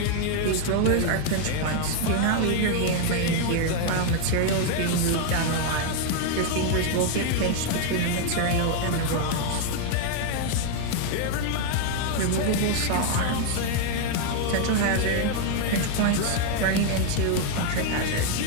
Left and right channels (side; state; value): both; different; correlation 0.00